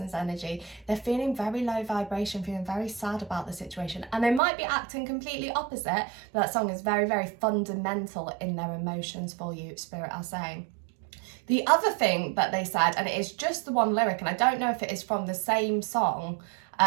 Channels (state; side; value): drops out; left; at 4.4 s